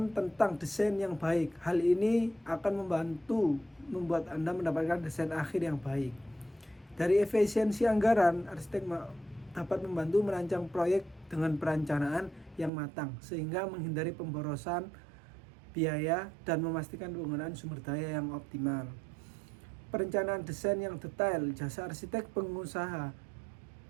tentang desain yang baik. Hal ini akan membantu membuat Anda mendapatkan desain akhir yang baik. Dari efisiensi anggaran, arsitek dapat membantu merancang proyek dengan perencanaan yang matang sehingga menghindari pemborosan biaya dan memastikan penggunaan sumber daya yang optimal. Perencanaan desain yang detail, jasa arsitek pengusaha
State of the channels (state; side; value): drops out; left; at 12.7 s